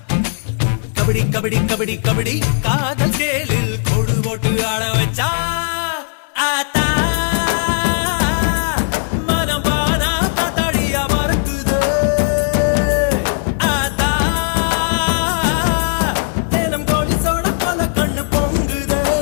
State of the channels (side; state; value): right; silent; digital silence